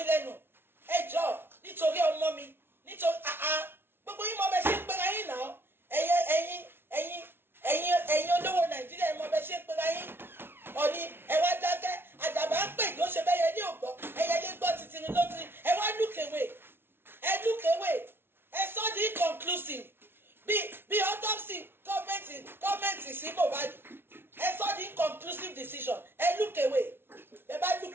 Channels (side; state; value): left; late; 0.11 ms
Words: lẹ́nu ẹ jọ̀ọ́ nítorí ọmọ mi nítorí gbogbo yín mọ bẹ ṣe ń pera yín náà ẹ̀yin olówó Nàìjíríà ẹ mọ bẹ ṣe ń pera yín Ọọ̀ni ẹ wá dákẹ́ àdàbà ń pè kí ó ṣe bẹ́yẹ ní ògbọ́ ẹyẹ lé gbọ́ títí ló ti ẹ wá look away ẹ sọ di inconclusive bí autopsy gọ́ọ̀mẹ̀ntì sí Mohbad ẹ sọ di inconclusive decision ẹ look away ẹ bá look